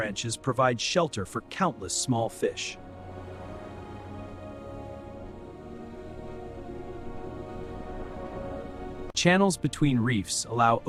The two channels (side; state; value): both; identical; correlation 1.00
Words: provide shelter for countless small fish. Channels between reefs allow